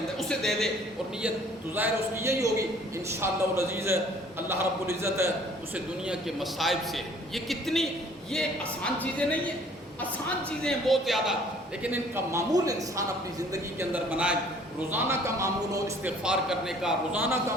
اسے دے دے، اور نیت تو ظاہر اس کی یہی ہوگی انشاءاللہ العزیز اللہ رب العزت اسے دنیا کے مصائب سے، یہ آسان چیزیں نہیں ہیں، آسان چیزیں ہیں بہت زیادہ، لیکن ان کا معمول انسان اپنی زندگی کے اندر بنائے۔ روزانہ کا معمول ہو استغفار کرنے کا، روزانہ کا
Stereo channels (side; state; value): both; normal; correlation 0.55